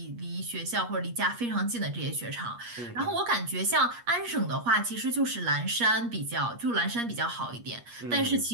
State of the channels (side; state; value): left; late; 8.4 ms